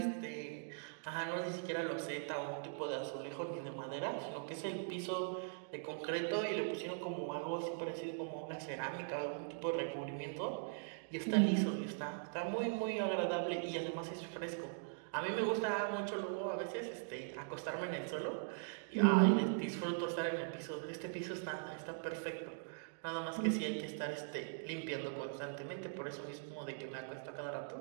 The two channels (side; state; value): left; silent; digital silence